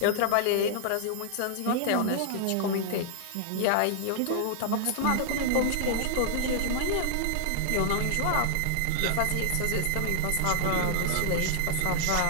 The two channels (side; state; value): both; different; correlation -0.01